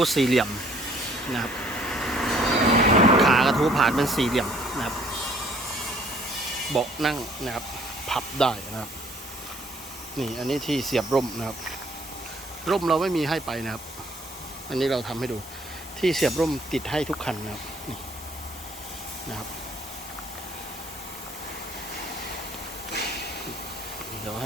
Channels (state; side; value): normal; both; correlation 0.60